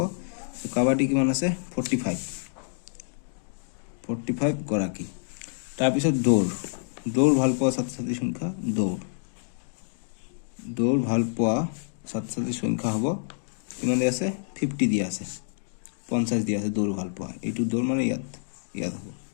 কাবাডী কিমান আছে 45 গৰাকী। তাৰপিছত দৌৰ ভাল পোৱা ছাত্ৰ-ছাত্ৰীৰ সংখ্যা, দৌৰ ভাল পোৱা ছাত্ৰ-ছাত্ৰীৰ সংখ্যা হ'ব কিমান দিয়া আছে 50 দিয়া আছে, 50 দিয়া আছে দৌৰ ভাল পোৱা। এইটো দৌৰ মানে ইয়াত হ'ব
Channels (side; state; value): right; silent; digital silence